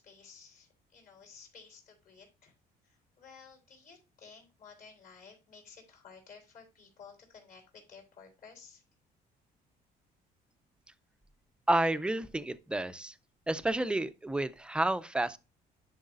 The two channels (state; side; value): normal; both; correlation 0.91